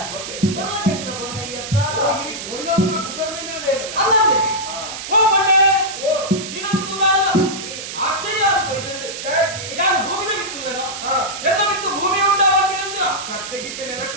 ಓಕೆ ಬರಲಾಗಿನ ಬಣ್ಣ ಈ ಅತ್ತ ಓ ಇಲ್ಲಿ ಕೊಯ್ನವರ ಬುಗರ್ನಿಂದ ಇದೆ ಅಲ್ಲಂದೆ ಓ ಬಣ್ಣೆ ಓ ನೀನೊಂದು ತೂದಾಳ ಆಶ್ಚರ್ಯ ಆಗ್ತದೆ ಯಾರು ಭೂಮಿದ ಬಿತ್ತಿಲ್ಲನ ಎಲ್ಲ ಬಿತ್ತು ಭೂಮಿ ಉಂಟಾಗಿ ಅಂಜನ ಸತ್ತೆಗಿತ್ತೆ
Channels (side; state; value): right; noise; hiss, 8 dB below the sound